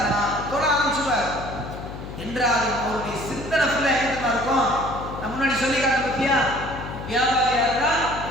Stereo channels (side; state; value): left; noise; hum, 10 dB below the sound